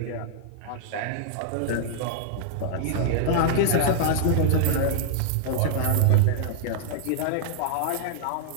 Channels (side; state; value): both; different; correlation -0.01